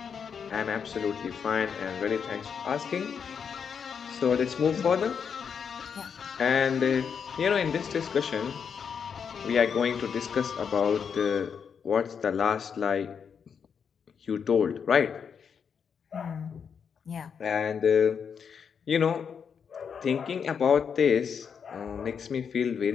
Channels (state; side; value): quieter; right; 6.8 dB